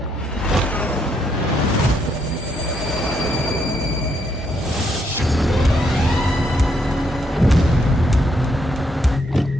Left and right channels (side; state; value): both; normal; correlation 0.75